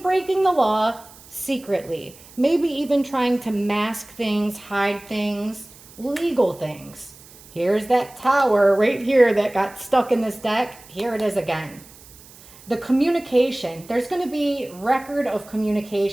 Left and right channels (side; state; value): right; noise; hiss, 22 dB below the sound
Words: the law secretly. Maybe even trying to mask things, hide things, legal things. Here's that Tower right here that got stuck in this deck. Here it is again. The communication. There's going to be record of